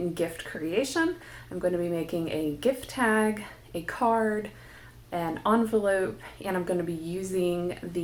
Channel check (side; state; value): both; identical; correlation 1.00